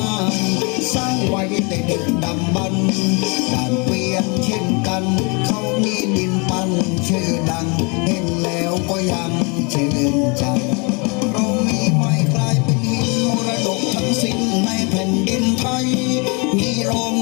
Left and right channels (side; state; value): right; quieter; 31.5 dB